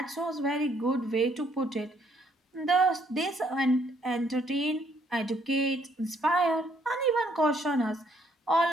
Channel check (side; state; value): both; normal; correlation 0.68